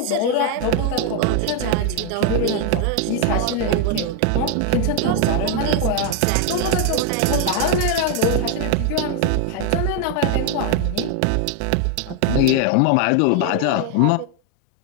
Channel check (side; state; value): both; different; correlation 0.01